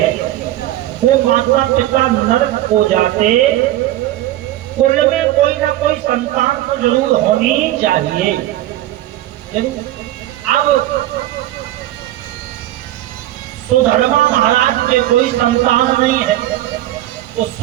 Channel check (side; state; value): left; quieter; 14.6 dB